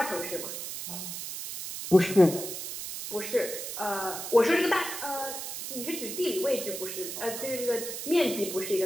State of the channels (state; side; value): noise; right; hiss, 7 dB below the sound